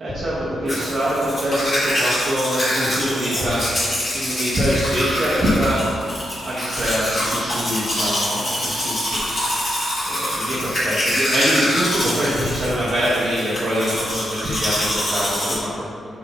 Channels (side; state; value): both; normal; correlation 0.83